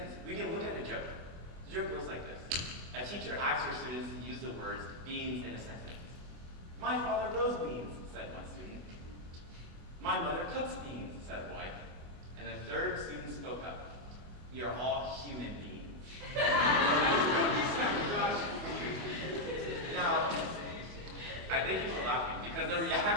we can look at a joke. The joke goes like this. A teacher asks her students to use the words beans in a sentence. "My father grows beans," said one student. "My mother cooks beans," said a boy. And the third student spoke up. "We are all human beings." Now, I thank you for laughing, because the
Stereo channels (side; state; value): left; late; 24 ms